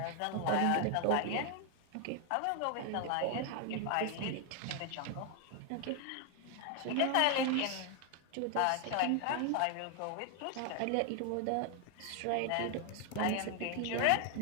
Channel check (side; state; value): both; different; correlation 0.01